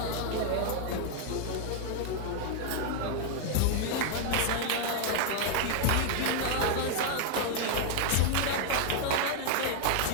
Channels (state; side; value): different; both; correlation 0.00